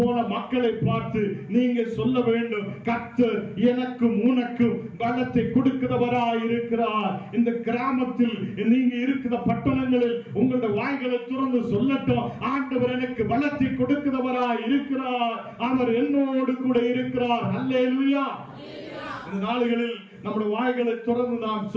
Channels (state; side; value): identical; both; correlation 1.00